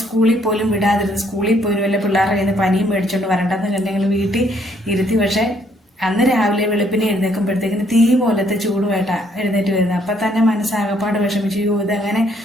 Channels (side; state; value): both; normal; correlation 0.68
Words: സ്കൂളിൽ പോലും വിടാതിരുന്നു. സ്കൂളിൽ പോലും വല്ല പിള്ളേരുടെ കയ്യിൽ നിന്ന് പനിയും മേടിച്ചുകൊണ്ട് വരണ്ടെന്ന് കണ്ട് ഞങ്ങൾ വീട്ടിൽ ഇരുത്തി. പക്ഷേ അന്ന് രാവിലെ വെളുപ്പിനെ എഴുന്നേൽക്കുമ്പോഴത്തേക്കിന് തീ പോലത്തെ ചൂടുമായിട്ടാണ് എഴുന്നേറ്റ് വരുന്നത്. അപ്പം തന്നെ മനസ്സാകപ്പാട് വിഷമിച്ചു. ഇതങ്ങനെ